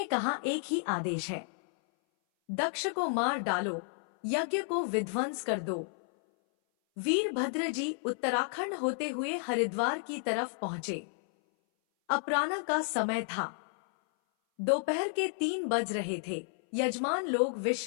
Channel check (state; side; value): silent; right; 57 dB below the other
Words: कहा, एक ही आदेश है, दक्ष को मार डालो, यज्ञ को विध्वंस कर दो। वीरभद्र जी उत्तराखंड होते हुए हरिद्वार की तरफ पहुंचे। अपराह्न का समय था, दोपहर के 3 बज रहे थे। यजमान लोग